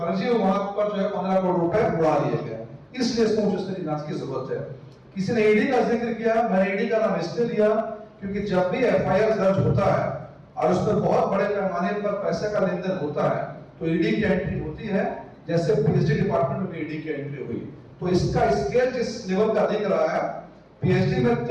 विभाग पर जो है 15 करोड़ रुपए उड़ा लिए गए। इसलिए इसको मुझे जांच की जरूरत है। किसी ने ईडी का जिक्र किया, मैंने ईडी का नाम इसलिए लिया क्योंकि जब भी एफआईआर दर्ज होता है और उस पर बहुत बड़े पैमाने पर पैसे का लेन देन होता है तो ईडी की एंट्री होती है, जैसे पीएचडी डिपार्टमेंट में भी ईडी की एंट्री हुई। तो इसका स्केल जिस लेवल का दिख रहा है, पीएचडी में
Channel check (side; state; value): both; identical; correlation 1.00